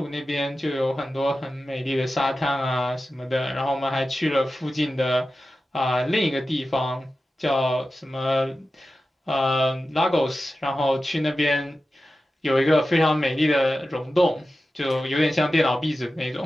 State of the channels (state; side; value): normal; both; correlation 0.93